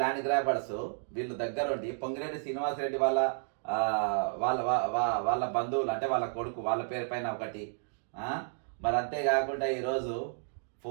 ల్యాండ్ గ్రాబర్స్ వీళ్ళు దగ్గరుండి పొంగిరెడ్డి శ్రీనివాసరెడ్డి వాళ్ళ వాళ్ళ వాళ్ళ బంధువులు అంటే వాళ్ళ కొడుకు వాళ్ళ పేరు పైన ఒకటి. మరి అంతేకాకుండా ఈరోజు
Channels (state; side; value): silent; left; digital silence